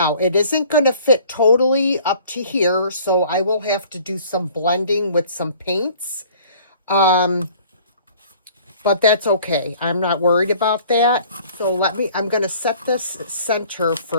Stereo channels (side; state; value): both; inverted; correlation -0.52